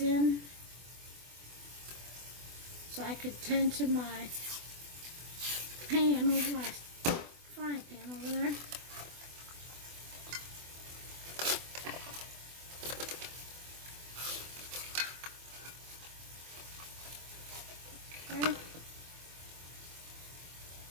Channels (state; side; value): late; left; 24 ms